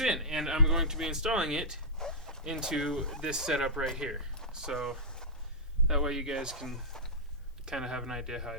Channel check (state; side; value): normal; both; correlation -0.11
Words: in, and I'm going to be installing it into this setup right here. So that way you guys can kind of have an idea how